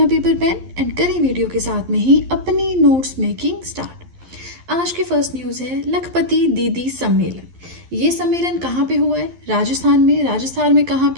पेपर पेन एंड करें वीडियो के साथ में ही अपनी नोट्स मेकिंग स्टार्ट। आज की फर्स्ट न्यूज़ है लखपति दीदी सम्मेलन। ये सम्मेलन कहाँ पे हुआ है? राजस्थान में। राजस्थान में कहाँ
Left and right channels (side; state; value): left; late; 11 ms